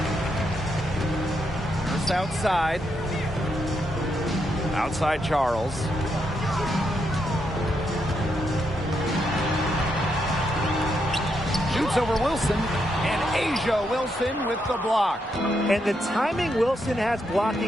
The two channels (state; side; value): normal; both; correlation 0.80